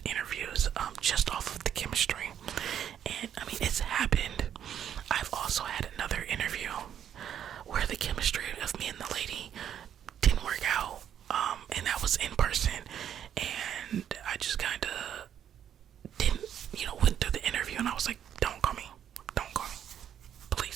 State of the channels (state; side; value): quieter; left; 9.6 dB